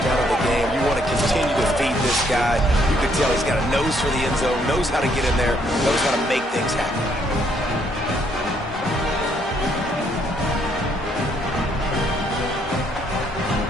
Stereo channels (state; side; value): normal; both; correlation 0.70